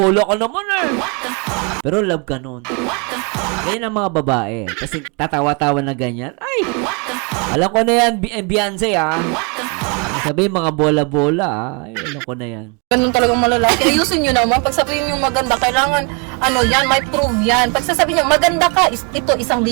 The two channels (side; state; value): left; quieter; 33.4 dB